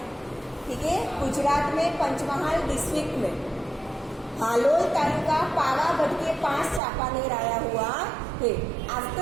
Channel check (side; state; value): left; drops out; at 6.8 s